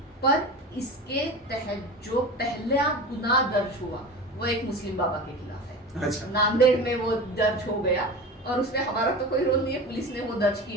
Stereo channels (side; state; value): both; normal; correlation 0.31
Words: पर इसके तहत जो पहला गुनाह दर्ज हुआ वो एक मुस्लिम बाबा के खिलाफ है। अच्छा। नांदेड़ में वो दर्ज हो गया और उसमें हमारा तो कोई रोल नहीं है, पुलिस ने वो दर्ज